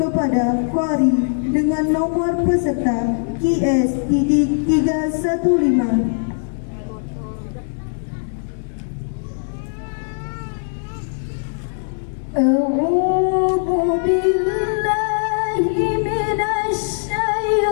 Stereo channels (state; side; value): silent; right; digital silence